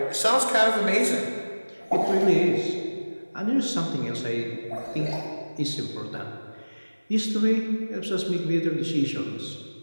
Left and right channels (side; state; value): both; inverted; correlation -1.00